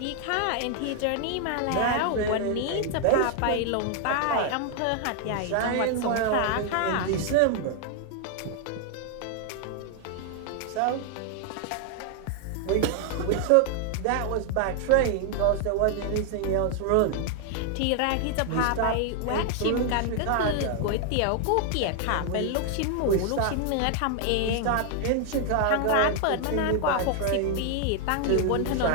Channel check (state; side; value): different; both; correlation 0.00